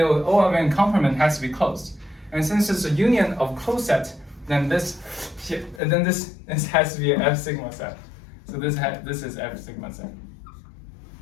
O of n complement has to be closed. And since it's a union of closed set, then this has to be an F sigma set. So this is F sigma set.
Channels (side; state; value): right; drops out; at 5.8 s